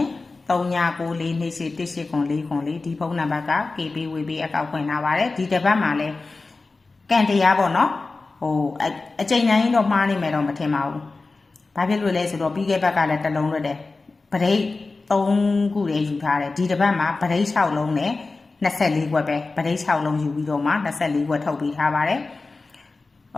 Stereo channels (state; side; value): quieter; right; 3.7 dB